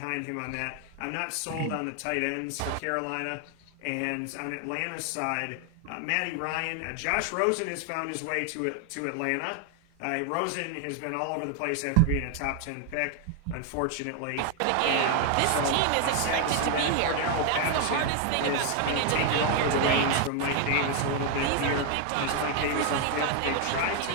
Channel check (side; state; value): both; different; correlation 0.00